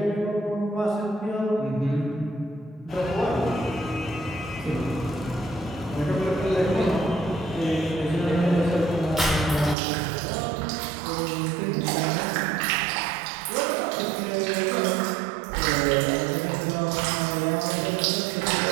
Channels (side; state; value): left; drops out; at 9.8 s